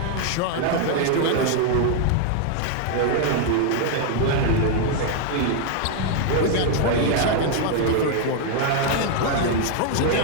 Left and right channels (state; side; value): different; both; correlation 0.00